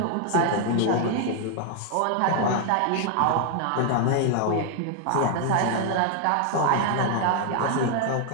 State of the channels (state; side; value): different; both; correlation 0.00